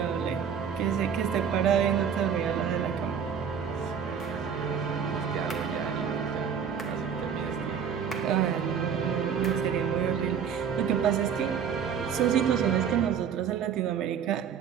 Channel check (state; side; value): quieter; left; 7.4 dB